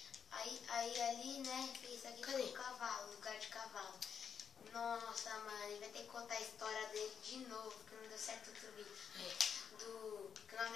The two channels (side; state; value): right; quieter; 7.2 dB